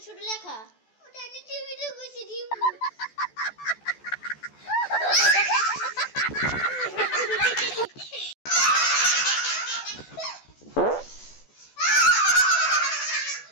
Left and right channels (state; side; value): late; right; 14 ms